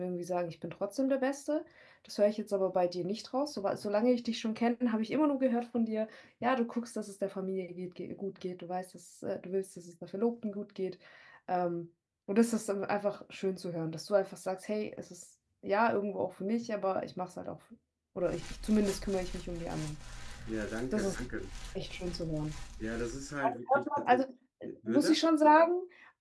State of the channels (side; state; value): both; identical; correlation 1.00